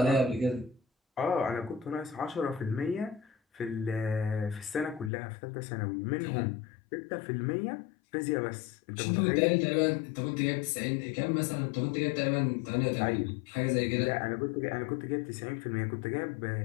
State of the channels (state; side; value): drops out; right; at 5.1 s